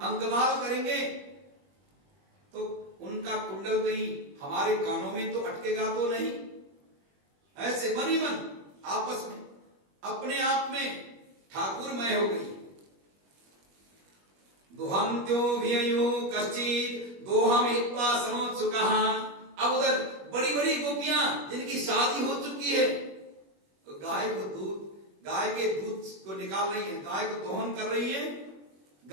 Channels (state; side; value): late; left; 21 ms